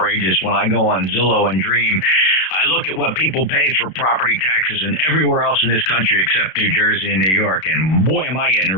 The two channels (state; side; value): late; right; 32 ms